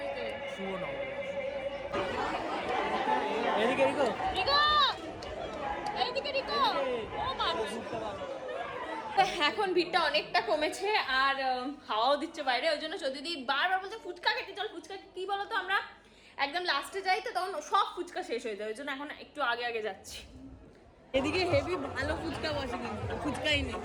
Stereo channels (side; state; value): both; identical; correlation 1.00